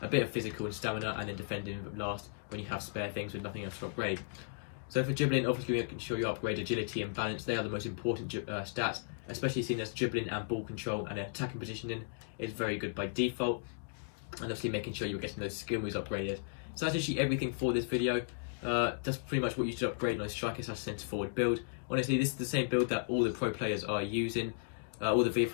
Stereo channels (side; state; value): right; silent; digital silence